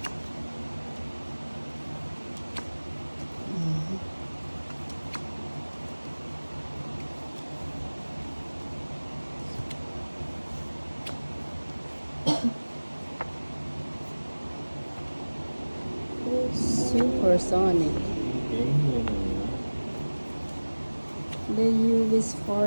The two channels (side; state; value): both; inverted; correlation -1.00